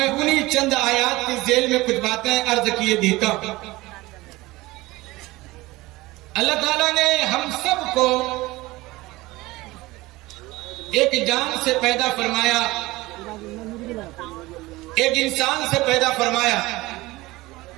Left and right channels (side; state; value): left; quieter; 20.1 dB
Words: انہی چند آیات کی ذیل میں کچھ باتیں عرض کیے دیتا ہوں. اللہ تعالیٰ نے ہم سب کو ایک جان سے پیدا فرمایا، ایک انسان سے پیدا فرمایا،